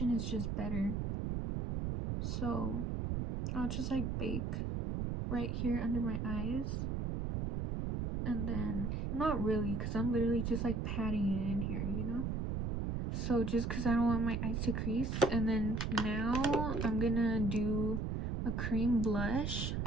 is just better. So I'll just like bake right here under my eyes, and then not really, because I'm literally just like patting it in here, you know. So just because I don't want my eyes to crease. And then now I'm gonna do a cream blush,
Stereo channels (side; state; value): right; noise; rumble, 1 dB below the sound